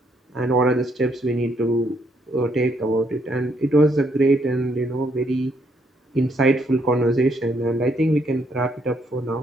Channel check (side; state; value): both; normal; correlation 0.72